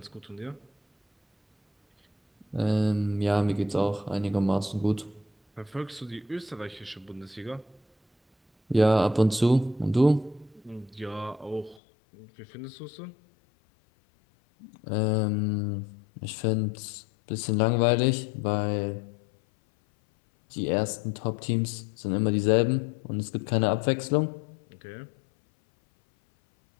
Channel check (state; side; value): drops out; right; at 11.8 s